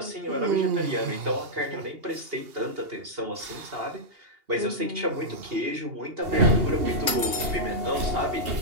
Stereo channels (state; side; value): late; left; 2.8 ms